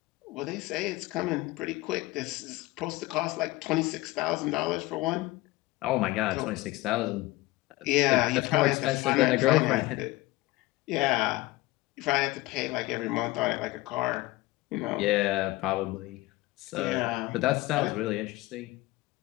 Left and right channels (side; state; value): right; quieter; 19.5 dB